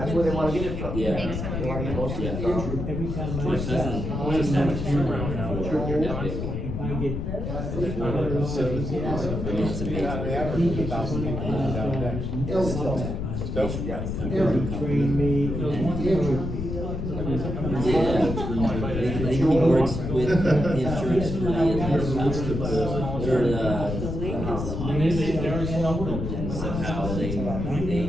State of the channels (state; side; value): noise; left; rumble, 4 dB below the sound